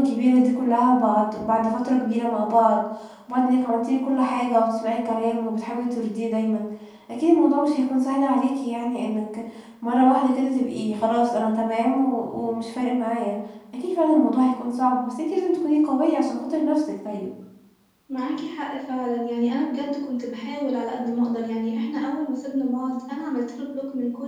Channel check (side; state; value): both; identical; correlation 1.00